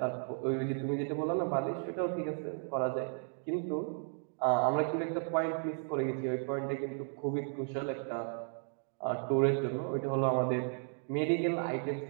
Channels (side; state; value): left; silent; 55 dB below the other